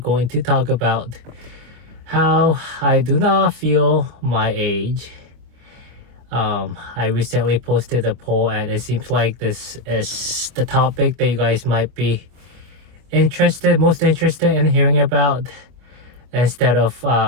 to talk about how I do not feel my age. I recently posted a poll and it seems like this is the topic that you guys might be most interested in hearing about, instead of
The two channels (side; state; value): left; late; 25 ms